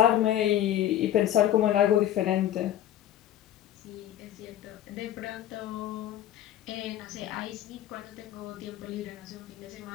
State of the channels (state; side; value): quieter; right; 12.0 dB